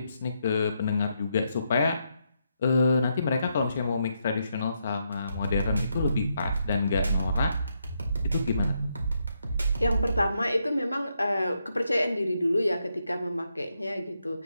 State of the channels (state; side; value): inverted; both; correlation -0.80